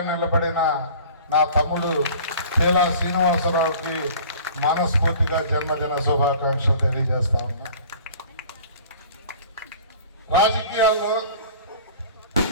నిలబడిన నా తమ్ముడు పీలా శ్రీనివాసరావుకి మనస్ఫూర్తిగా జన్మదిన శుభాకాంక్షలు తెలియజేస్తా ఉన్నా. రాజకీయాల్లో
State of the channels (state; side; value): inverted; both; correlation -0.45